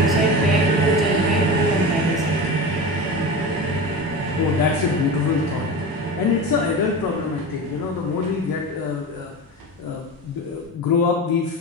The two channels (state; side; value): normal; both; correlation 0.27